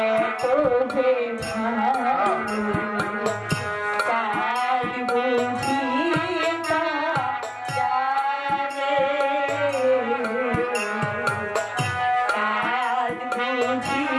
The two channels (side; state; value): both; identical; correlation 1.00